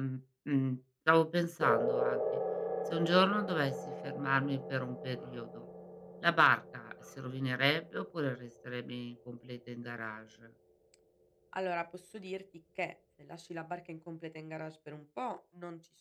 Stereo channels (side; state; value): both; identical; correlation 1.00